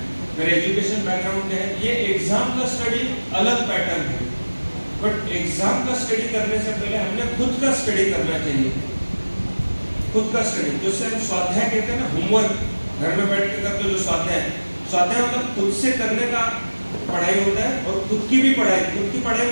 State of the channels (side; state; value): both; inverted; correlation -1.00